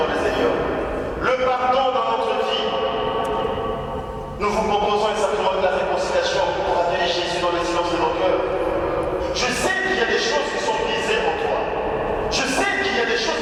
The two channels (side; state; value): both; identical; correlation 1.00